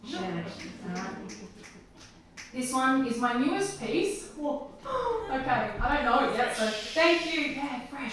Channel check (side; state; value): both; identical; correlation 1.00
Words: Share it. Alright? This one is my newest piece. Whoa. Okay, I don't know it yet, so thank you. Yeah,